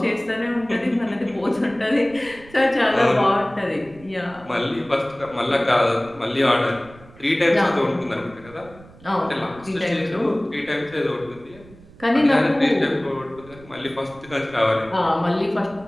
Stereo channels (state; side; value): noise; right; rumble, 22 dB below the sound